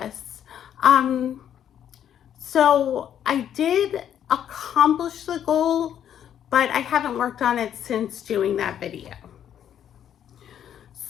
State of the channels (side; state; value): right; quieter; 9.8 dB